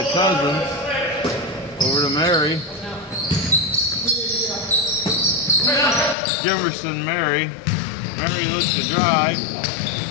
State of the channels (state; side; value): drops out; right; at 6.2 s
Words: Cousins. Over to Mary. Jemerson, Mary. Mary looks to drive.